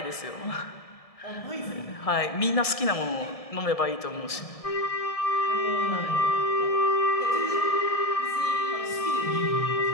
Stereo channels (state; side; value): late; right; 1.7 ms